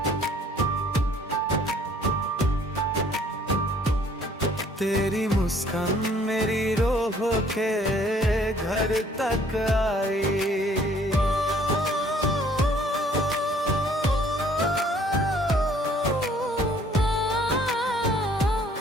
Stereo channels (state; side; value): normal; both; correlation 0.59